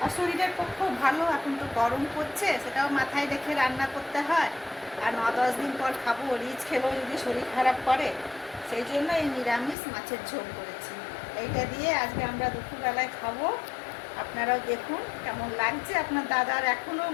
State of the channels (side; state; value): right; drops out; at 9.8 s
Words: আর শরীরের পক্ষেও ভালো। এখন তো গরম পড়ছে, সেটাও মাথায় রেখে রান্না করতে হয়। আর 9-10 দিন পর খাবো, রিচ খেলেও যদি শরীর খারাপ করে, সেই জন্য এই নিরামিষ মাছের ঝোল করেছি। এইটা দিয়ে আজকে আমরা দুপুরবেলায় খাবো। আপনারাও দেখুন কেমন লাগছে। আপনার দাদার এখনও